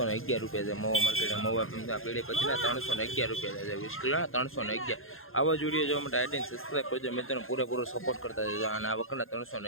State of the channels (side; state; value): right; late; 0.60 ms